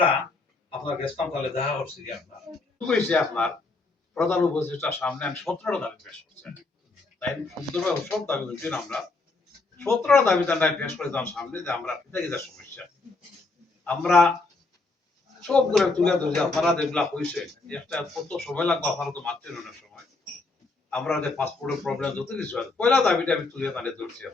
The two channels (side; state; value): right; quieter; 3.6 dB